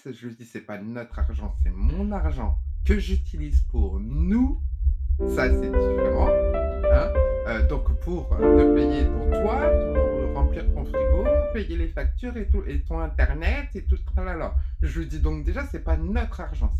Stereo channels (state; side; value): identical; both; correlation 1.00